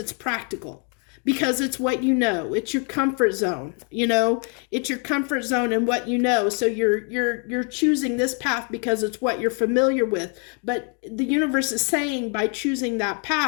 practical. Because it's what it's your comfort zone, it's your comfort zone and what so you're choosing this path because it's what you're familiar with. But the universe is saying by choosing that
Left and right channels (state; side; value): quieter; right; 38.0 dB